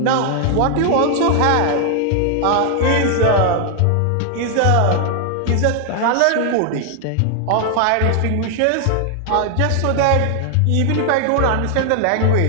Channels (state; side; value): different; both; correlation 0.00